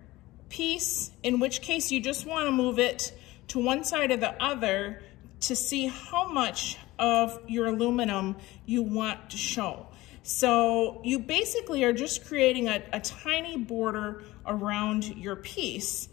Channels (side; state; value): right; quieter; 18.8 dB